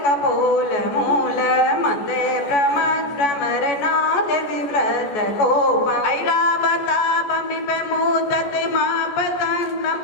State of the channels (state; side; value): late; right; 14 ms